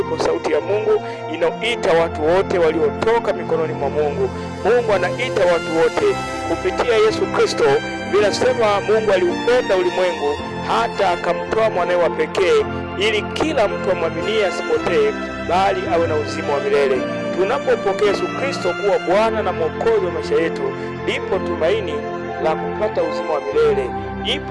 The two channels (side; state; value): both; identical; correlation 1.00